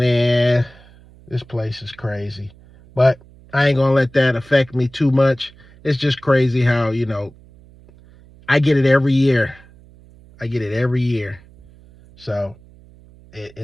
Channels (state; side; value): noise; right; hum, 25 dB below the sound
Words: this place is crazy. But I ain't gonna let that affect me too much. It's just crazy how, I get it every year. I get it every year. So